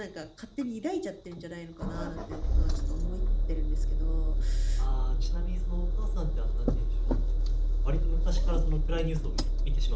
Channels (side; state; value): both; identical; correlation 1.00